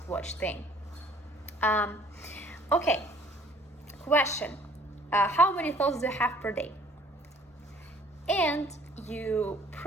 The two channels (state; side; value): normal; both; correlation 0.57